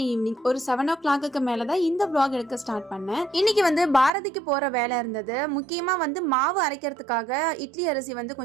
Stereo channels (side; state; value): left; drops out; at 4.1 s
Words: evening ஒரு 7 o'clock மேலே தான் இந்த vlog எடுக்க ஸ்டார்ட் பண்ணேன். இன்னைக்கு பாரதிக்கு போகிற வேலை இருந்தது. முக்கியமாக மாவு அரைக்கிறதுக்காக இட்லி அரிசி